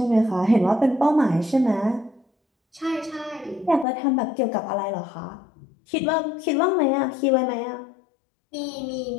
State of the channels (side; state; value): right; drops out; at 3.9 s